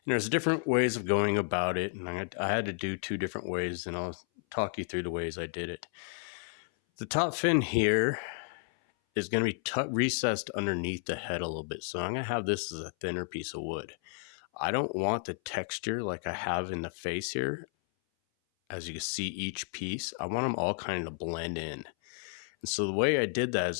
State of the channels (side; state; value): right; silent; 56 dB below the other